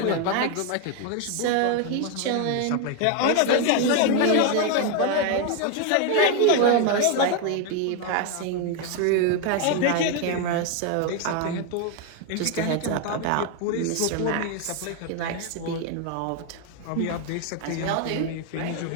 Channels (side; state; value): both; different; correlation 0.01